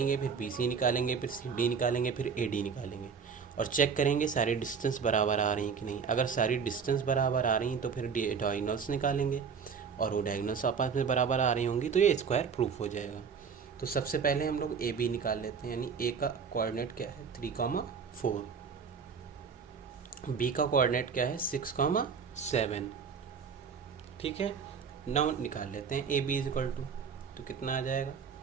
फिर बी सी निकालेंगे, फिर सी डी निकालेंगे, फिर ए डी निकालेंगे, और चेक करेंगे सारी डिस्टेंस बराबर आ रही हैं कि नहीं। अगर सारी डिस्टेंस बराबर आ रही हैं तो फिर डायगोनल्स निकालेंगे, और वो डायगोनल्स आपस में बराबर आ रही होंगी तो ये स्क्वायर प्रूफ हो जाएगा। तो सबसे पहले हम लोग ए बी निकाल लेते हैं, यानी ए का कोऑर्डिनेट क्या है 3,4, बी का कोऑर्डिनेट क्या है 6,7, ठीक है। नाउ निकाल लेते हैं A B is equal to, तो कितना आ जाएगा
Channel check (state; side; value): quieter; left; 6.2 dB